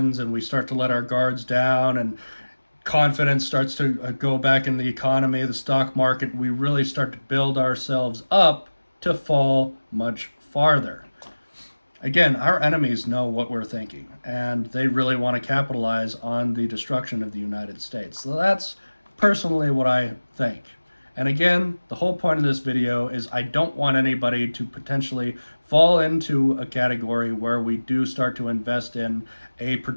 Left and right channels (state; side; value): inverted; both; correlation -1.00